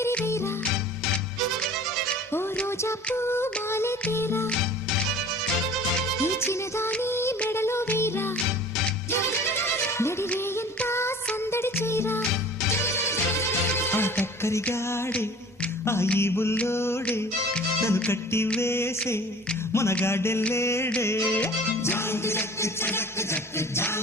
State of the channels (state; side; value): normal; both; correlation 0.45